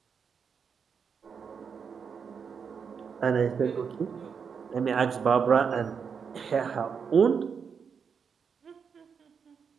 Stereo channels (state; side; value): quieter; left; 6.4 dB